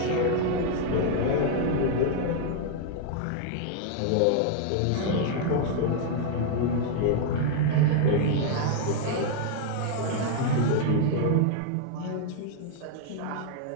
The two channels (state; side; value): different; both; correlation 0.00